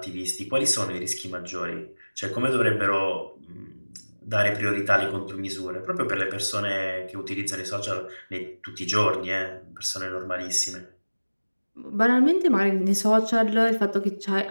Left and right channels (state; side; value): inverted; both; correlation -1.00